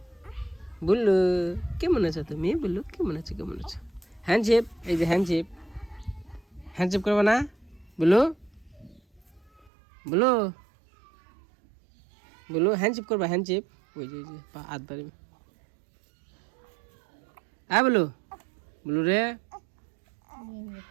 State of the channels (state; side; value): drops out; left; at 9.7 s